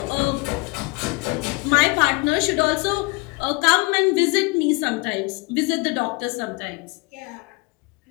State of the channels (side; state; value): right; quieter; 28.0 dB